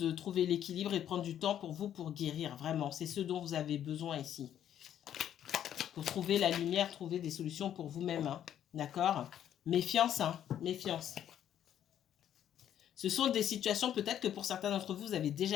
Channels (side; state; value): right; quieter; 10.4 dB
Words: trouver l'équilibre et prendre du temps pour vous pour guérir. Vraiment, c'est ce dont vous avez besoin ici. Pour trouver la lumière, trouver des solutions pour vous-même. Hein. D'accord? Méfiance, hein, méfiance. Ce sont des situations, peut-être que pour certains d'entre vous, vous avez